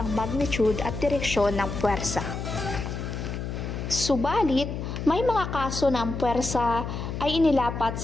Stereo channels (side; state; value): left; noise; hum, 5 dB below the sound